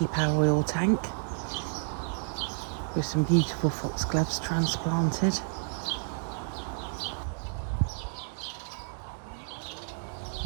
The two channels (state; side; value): silent; left; digital silence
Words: our oil tank, with some beautiful foxgloves transplanted.